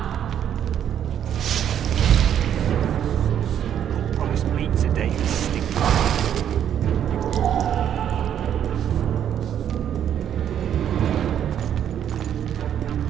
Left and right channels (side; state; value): left; quieter; 9.6 dB